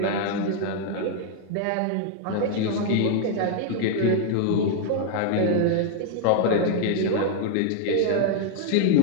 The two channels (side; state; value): both; different; correlation 0.00